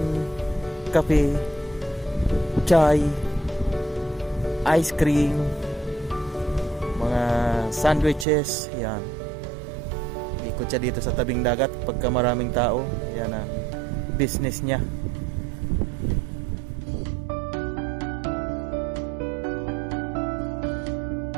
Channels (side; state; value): left; drops out; at 8.2 s